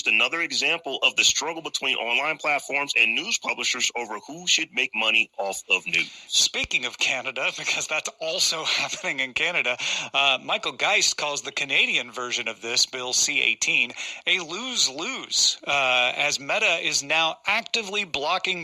another example of the struggle between online platforms and news publishers over who should make money off of news. Speaking of Canada, because that's also happening in Canada, Michael Geist calls the Canadian version of this, Bill C-18, a lose-lose, as Meta is now actively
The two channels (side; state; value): both; identical; correlation 1.00